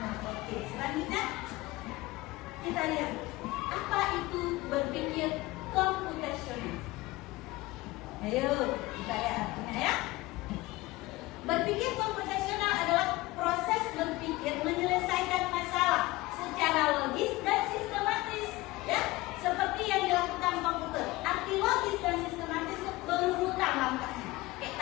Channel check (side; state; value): right; quieter; 20.1 dB